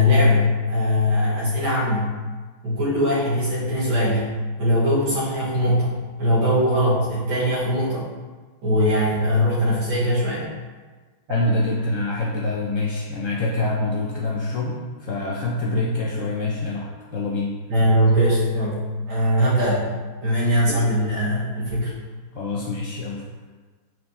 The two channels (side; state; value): left; late; 14 ms